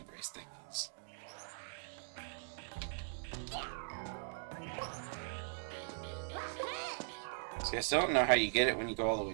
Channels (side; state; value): left; silent; digital silence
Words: race thingies. See, I still don't know how you get it when you go all the